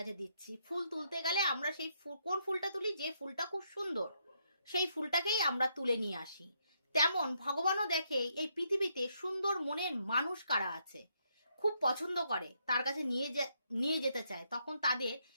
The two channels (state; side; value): inverted; both; correlation -0.76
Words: দিচ্ছি। ফুল তুলতে গেলে আমরা সেই কোন ফুলটা তুলি? যে ফুলটা খুব সুন্দর, সেই ফুলটাকেই আমরা তুলে নিয়ে আসি। তেমন ভগবানও দেখে এই পৃথিবীতে সুন্দর মনের মানুষ কারা আছে, খুব পছন্দ করে, তার কাছে নিয়ে যেতে চায়, তখন তাদের